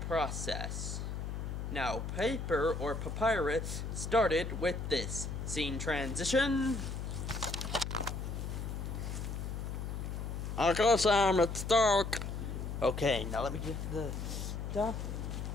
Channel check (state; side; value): noise; left; hum, 4 dB below the sound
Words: Now, paper or papyrus started with this. Scene transition. Okay, Sam, it's dark. Okay, now let me get the stuff.